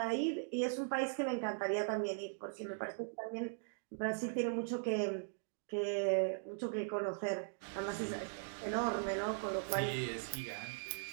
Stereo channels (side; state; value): left; silent; digital silence